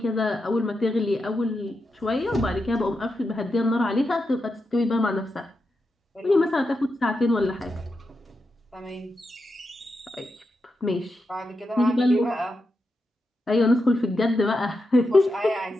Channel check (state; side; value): normal; both; correlation 0.87